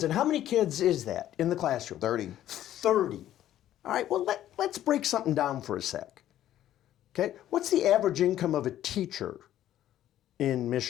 And how many kids is that in the classroom? 30. 30. All right, well, let's break something down for a sec. Okay, what's the average income of a teacher in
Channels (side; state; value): right; quieter; 12.4 dB